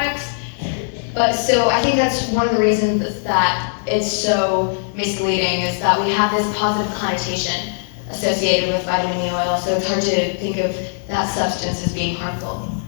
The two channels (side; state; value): right; silent; 66 dB below the other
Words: But so I think that's one of the reasons that it's so misleading is that we have this positive connotation associated with vitamin E oil, so it's hard to think of that substance as being harmful.